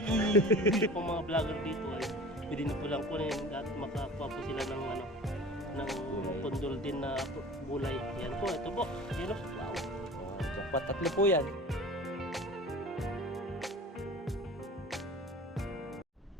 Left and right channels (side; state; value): both; normal; correlation 0.40